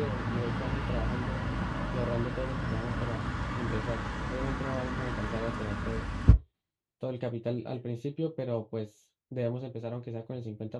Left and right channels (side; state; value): both; identical; correlation 1.00